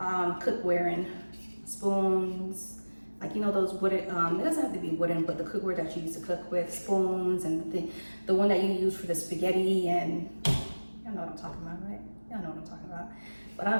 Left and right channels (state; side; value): inverted; both; correlation -1.00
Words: in. Spoons, like, you know, those wooden, it doesn't have to be wooden, but the cookware that you use to cook with, spoons, and the one that you use for the spaghetti, and y'all know what I'm talking about, right? Y'all know what I'm talking about. But